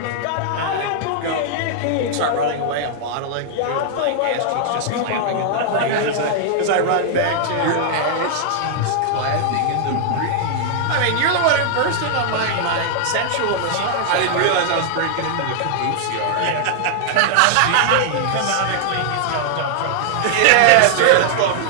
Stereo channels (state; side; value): different; both; correlation -0.01